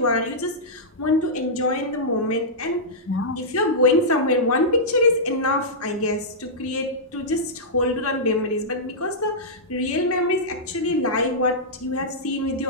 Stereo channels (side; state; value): both; normal; correlation -0.12